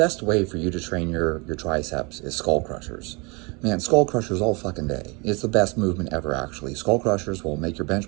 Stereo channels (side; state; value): left; quieter; 28.9 dB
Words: way for you to train your triceps is skull crushers. Man, skull crushers all fucking day. It's the best movement ever, actually. Skull crushers will make your